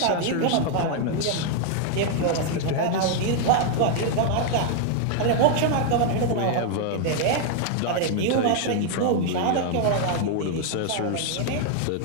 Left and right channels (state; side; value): different; both; correlation 0.00